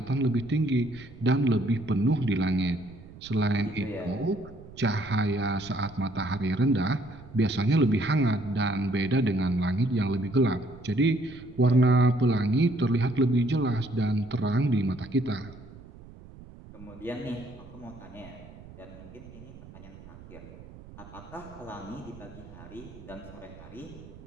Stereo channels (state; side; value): noise; right; rumble, 18 dB below the sound